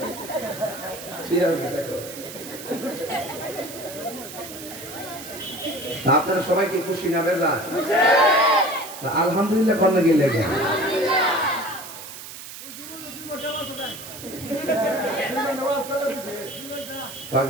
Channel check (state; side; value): noise; right; hiss, 12 dB below the sound